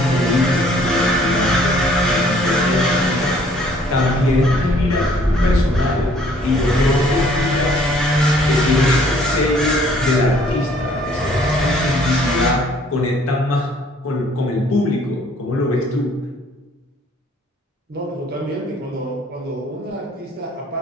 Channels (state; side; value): normal; both; correlation 0.59